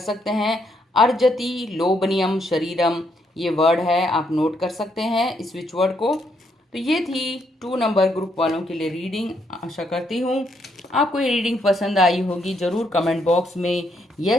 हैं, अर्जति लोभनियम शरीरम, ये वर्ड है, आप नोट कर सकते हैं इस स्विच वर्ड को। तो ये थी 2 नंबर ग्रुप वालों के लिए रीडिंग। आशा करती हूँ आपको ये रीडिंग पसंद आई होगी। ज़रूर कमेंट बॉक्स में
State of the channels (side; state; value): both; normal; correlation 0.75